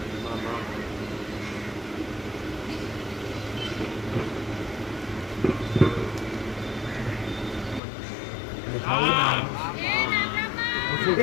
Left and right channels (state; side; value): drops out; right; at 7.8 s